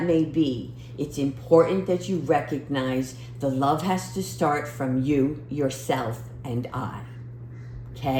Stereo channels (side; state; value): both; identical; correlation 1.00